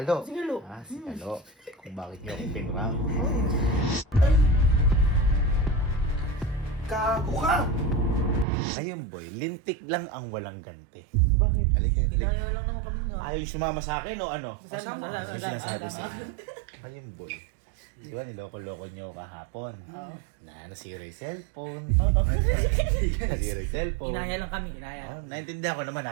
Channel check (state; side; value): drops out; left; at 8.5 s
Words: Ah, si Kalo. Kung bakit niyo ako pinrang. Kago ka! Ayun, boy. Lintik lang ang walang ganti. Bakit? Halika. Kinaya lang naman kami nga. Ayaw sumama sa akin o ano? Kasama. Ano sinasabi sa akin? Ayun, boy. Di ba, niloko-loko niyo kahapon? Oo. Nasira yung cellphone. Nasira yung cellphone. Kinaya lang kami, kinaya. Oh, naintindihan ko naman,